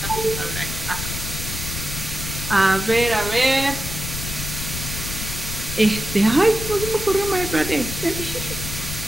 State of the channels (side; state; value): left; noise; rumble, 6 dB below the sound